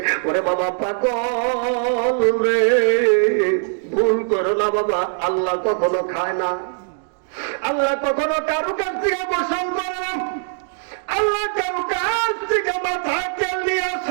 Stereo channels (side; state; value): left; silent; digital silence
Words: ওরে বাবা পাগল রে, ভুল করো না বাবা, আল্লাহ কখনো খায় না, আল্লাহ কখনো কারো কাছ থেকে গোসল করে না, আল্লাহ কারো কাছ থেকে মাথায় তেল নিয়ে